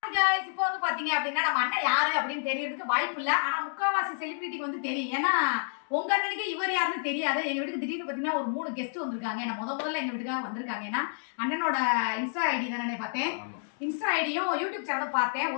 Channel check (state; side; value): silent; right; digital silence